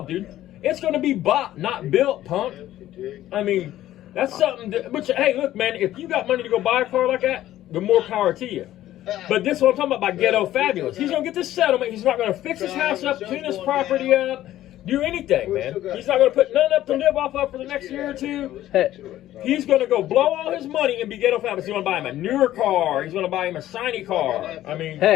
dude. It's going to be bought, not built, punk. I mean, that's something that, which, hey, look, man, if you got money to go buy a car like that, the more power to you. But this is what I'm talking about by ghetto fabulous. He's going to get this settlement. He's not going to fix his house up, clean his property up, do anything, man. He's not going to put none up to live off of for the next year or two. He's going to go blow all his money and be ghetto fabulous. He's going to buy him a newer car. He's going to buy him a shiny car. I mean,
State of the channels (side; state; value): right; quieter; 13.6 dB